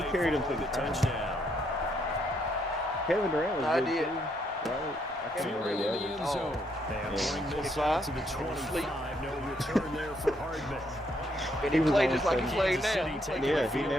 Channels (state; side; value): normal; both; correlation 0.73